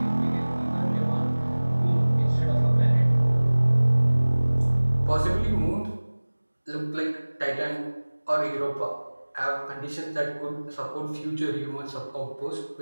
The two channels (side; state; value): both; inverted; correlation -1.00